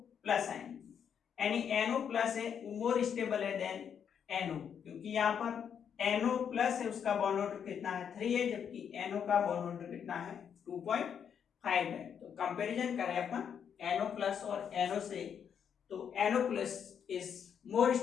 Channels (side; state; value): right; quieter; 7.9 dB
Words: प्लस आयन, यानी NO प्लस है मोर स्टेबल है देन NO, क्योंकि यहाँ पर NO प्लस है उसका बॉन्ड ऑर्डर कितना है, 3 है, जबकि NO का बॉन्ड ऑर्डर कितना है, 2.5 है। तो कंपैरिजन करें अपन NO प्लस और NO से तो NO plus is more